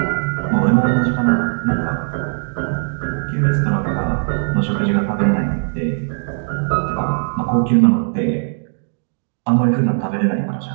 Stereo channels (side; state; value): left; silent; digital silence